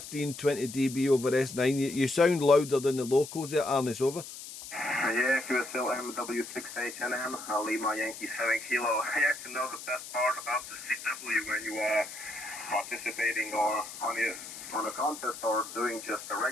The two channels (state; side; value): noise; left; hiss, 12 dB below the sound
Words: dB over S9. You sound louder than the locals there, Ernest, over. Yeah, QSL MW6HNN, Lima Yankee 7 Kilo. I actually know the best part about the CW when you are participating or on a contest or doing just a